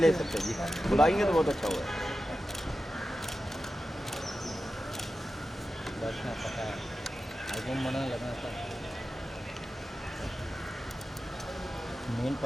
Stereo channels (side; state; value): both; normal; correlation 0.92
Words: ले सकते हैं जी, बुलाएंगे तो बहुत अच्छा होगा। पता है album बनाने लगना था मेन